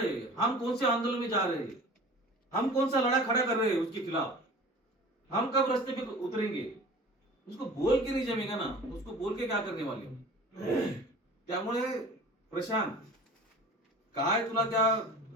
हैं? हम कौन से आंदोलन में जा रहे हैं? हम कौन सा लड़ा खड़ा कर रहे हैं उसके खिलाफ? हम कब रास्ते पे उतरेंगे? उसको बोल के नहीं जमेगा ना, उसको बोल के क्या करने वाले. त्यामुळे प्रशांत, काय तुला त्या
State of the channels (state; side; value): normal; both; correlation 0.41